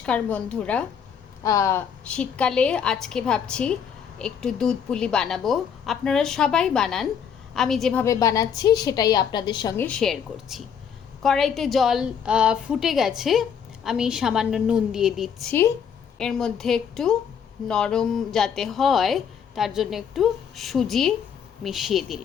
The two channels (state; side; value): quieter; right; 7.5 dB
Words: বন্ধুরা। শীতকালে আজকে ভাবছি একটু দুধ পুলি বানাবো। আপনারা সবাই বানান, আমি যেভাবে বানাচ্ছি সেটাই আপনাদের সঙ্গে শেয়ার করছি। কড়াইতে জল ফুটে গেছে, আমি সামান্য নুন দিয়ে দিচ্ছি। এর মধ্যে একটু নরম যাতে হয় তার জন্য একটু সুজি মিশিয়ে